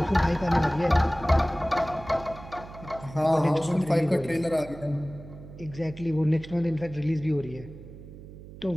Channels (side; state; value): right; noise; hum, 16 dB below the sound